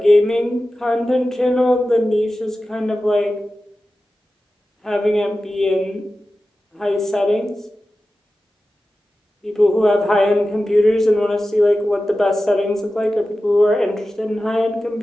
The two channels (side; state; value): both; normal; correlation 0.94